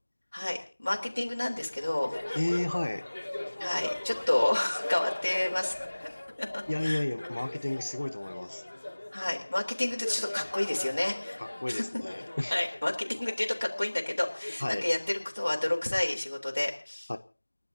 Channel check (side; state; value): both; inverted; correlation -1.00